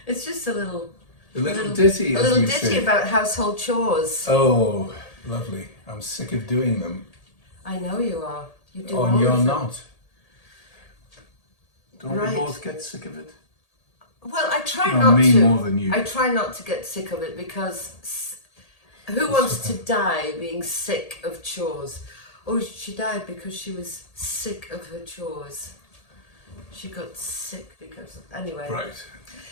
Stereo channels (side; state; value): right; late; 1.8 ms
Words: It's just a little ditty, a little ditty about household chores. Oh, lovely. I'm sick of doing them. I know you are. You do Oh, all and you're of them. not. Don't Right. we both get sick of it? Well, I try No, not me to. more than you. I try not to get sick of it because who wants to die being sick of chores? Oh, she died because she was sick of her chores. She got sick because anyway. Right.